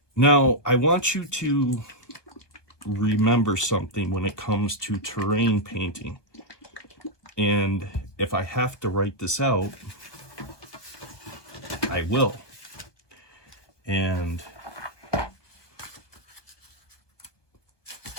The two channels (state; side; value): late; right; 1.2 ms